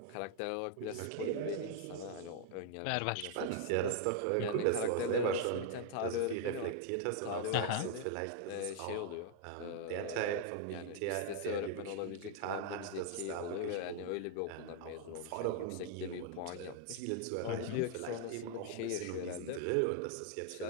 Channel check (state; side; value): different; both; correlation 0.00